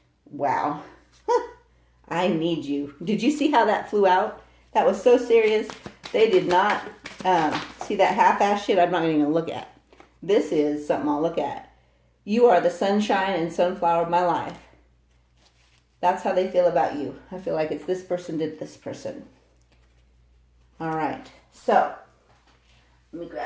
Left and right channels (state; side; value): identical; both; correlation 1.00